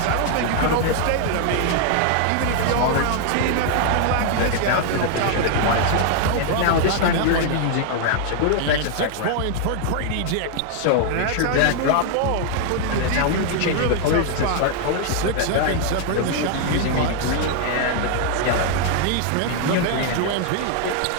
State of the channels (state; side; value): different; both; correlation 0.00